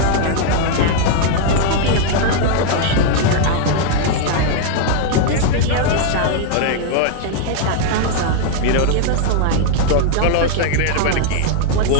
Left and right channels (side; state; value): both; different; correlation 0.00